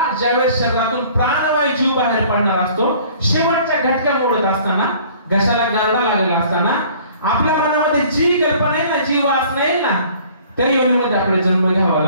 ज्यावेळेस शरीरातून प्राणवायू जीव बाहेर पडणार असतो, शेवटच्या घटका मोडत असताना, घशाला गारडा लागलेला असताना आपल्या मनामध्ये जी कल्पना येईल ना, जी वासना येईल ना, त्या योनीमध्ये आपला जन्म घ्यावा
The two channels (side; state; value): both; inverted; correlation -0.52